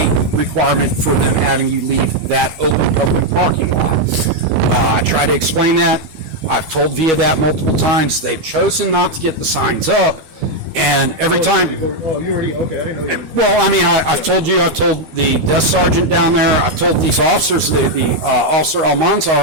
requirement for them having you leave that open public parking lot. I try to explain that. I've told VIA that multiple times. They've chosen not to get the signs up. And every time... Oh, you already... Okay, I didn't know you... Well, I mean, I've told you, I've told the desk sergeant down there, I've told these officers, the officer Almanza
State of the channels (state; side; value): late; left; 13 ms